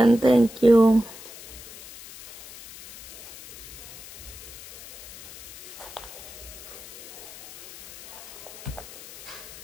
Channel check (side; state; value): left; noise; hiss, 15 dB below the sound